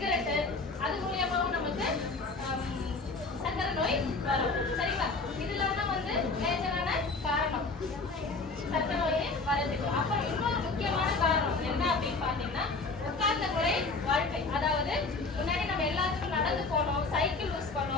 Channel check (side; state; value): right; quieter; 3.8 dB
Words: அது மூலியமாவும் நமக்கு சர்க்கரை நோய் வரும். சரிங்களா? இதெல்லாம் தான் வந்து மேஜரான காரணம் சர்க்கரை நோய் வரதுக்கு. அப்புறம் இன்னொரு முக்கியமான காரணம் என்ன அப்படின்னு பாத்தீங்கன்னா உட்கார்ந்த முறை வாழ்க்கை. அதாவது முன்னாடி நம்ம எல்லாத்துக்கும் நடந்து போனோம், சைக்கிள் யூஸ்